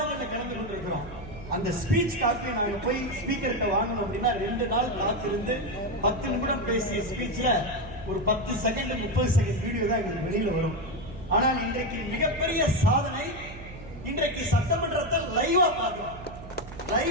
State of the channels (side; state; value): right; noise; hum, 15 dB below the sound